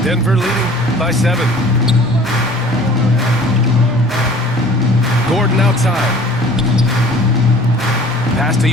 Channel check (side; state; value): both; normal; correlation 0.49